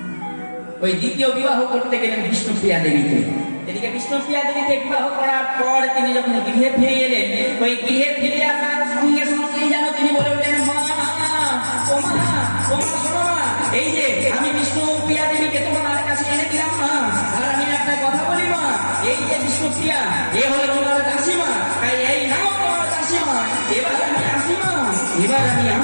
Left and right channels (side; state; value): both; inverted; correlation -1.00